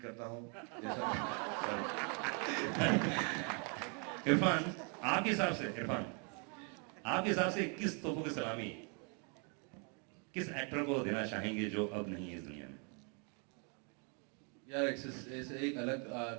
करता हूँ जैसा. इरफान, आपके हिसाब से किस तोपों की सलामी किस एक्टर को देना चाहेंगे जो अब नहीं है इस दुनिया में? यार ऐसे एक अलग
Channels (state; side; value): quieter; left; 37.5 dB